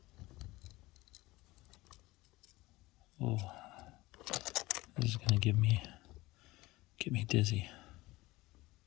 Oh, this is gonna get me dizzy.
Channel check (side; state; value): right; quieter; 19.9 dB